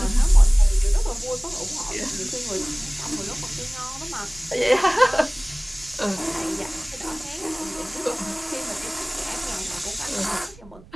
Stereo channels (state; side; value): noise; right; rumble, 22 dB below the sound